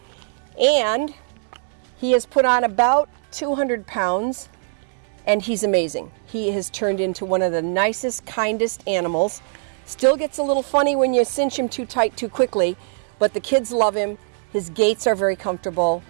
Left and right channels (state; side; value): silent; left; digital silence